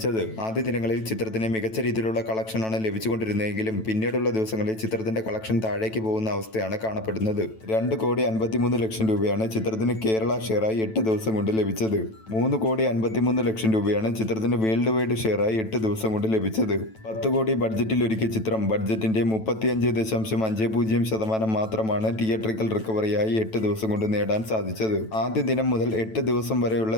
ആദ്യ ദിനങ്ങളിൽ ചിത്രത്തിന് മികച്ച രീതിയിലുള്ള കളക്ഷനാണ് ലഭിച്ചുകൊണ്ടിരുന്നതെങ്കിലും പിന്നീടുള്ള ദിവസങ്ങളിൽ ചിത്രത്തിന്റെ കളക്ഷൻ താഴേക്ക് പോകുന്ന അവസ്ഥയാണ് കാണപ്പെടുന്നത്. 2,53,00,000 രൂപയാണ് ചിത്രത്തിന് കേരള ഷെയറായി 8 ദിവസം കൊണ്ട് ലഭിച്ചത്. 3,53,00,000 രൂപയാണ് ചിത്രത്തിന് വേൾഡ് വൈഡ് ഷെയറായി 8 ദിവസം കൊണ്ട് ലഭിച്ചത്. 10 കോടി ബഡ്ജറ്റിൽ ഒരുക്കിയ ചിത്രം ബഡ്ജറ്റിന്റെ 35.50% മാത്രമാണ് തിയേറ്ററിക്കൽ റിക്കവറിയായി 8 ദിവസം കൊണ്ട് നേടാൻ സാധിച്ചത്. ആദ്യ ദിനം മുതൽ 8 ദിവസം വരെയുള്ള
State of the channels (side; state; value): right; late; 9.1 ms